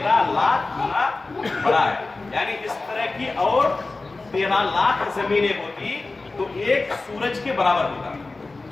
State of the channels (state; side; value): quieter; right; 3.5 dB